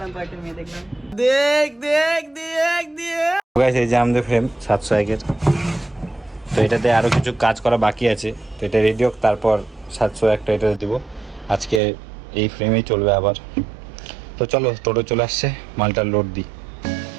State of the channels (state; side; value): drops out; left; at 11.8 s